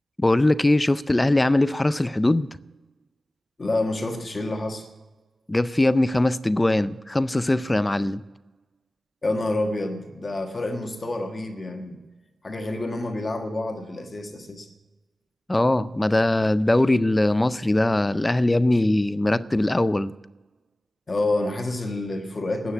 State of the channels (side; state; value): both; normal; correlation 0.98